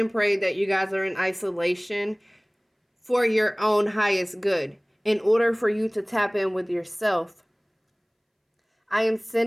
pray that you guys are in isolation for your own highest good, in order for you to tap in with yourself. I am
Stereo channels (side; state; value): both; identical; correlation 1.00